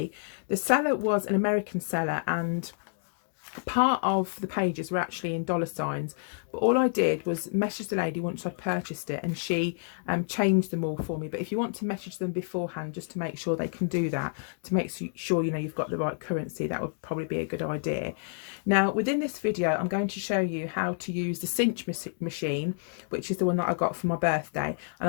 The seller was an American seller and part of the pages were actually in dollar signs, but all I did was message the lady once I'd purchased it, and she changed them all for me. But if you want to message them beforehand just to make sure they can do that, to make sure you know you've got the right currency, that would probably be a good idea. Now within this video I'm going to show you how to use the Cinch machine, which is the one that I got for my birthday, and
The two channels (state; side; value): silent; right; digital silence